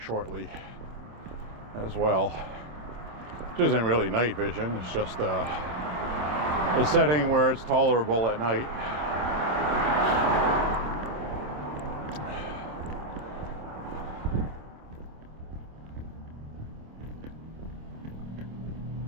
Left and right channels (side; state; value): left; late; 26 ms